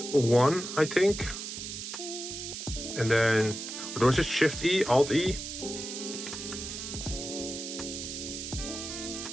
1, I think. And then, what was it? Shift E, Alt E?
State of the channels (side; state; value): right; noise; hiss, 7 dB below the sound